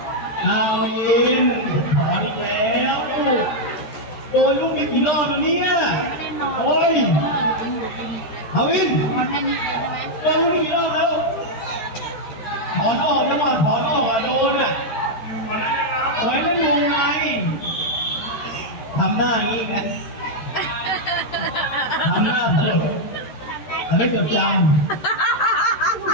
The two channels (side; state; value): right; late; 13 ms